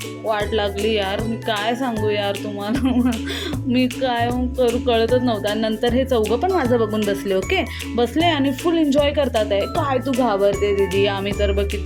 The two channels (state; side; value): identical; both; correlation 1.00